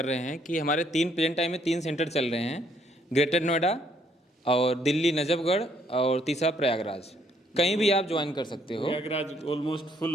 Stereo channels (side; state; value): both; normal; correlation 0.68